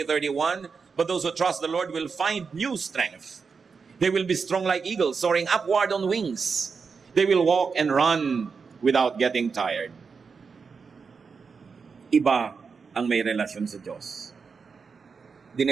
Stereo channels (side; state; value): left; quieter; 5.3 dB